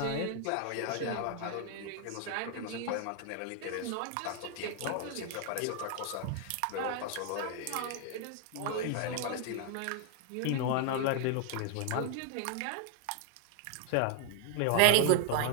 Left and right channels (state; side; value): different; both; correlation 0.00